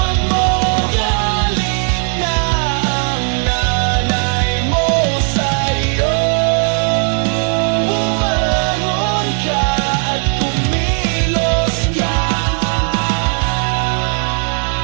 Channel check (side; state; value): left; quieter; 38.3 dB